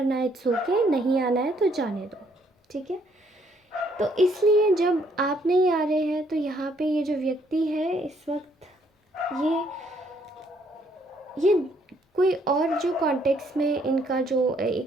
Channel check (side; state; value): both; normal; correlation 0.68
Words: इट्स ओके, नहीं आना है तो जाने दो, ठीक है। तो इसलिए जब आप नहीं आ रहे हैं तो यहाँ पे ये जो व्यक्ति है इस वक्त ये कोई और जो कॉन्टेक्स्ट में इनका जो एक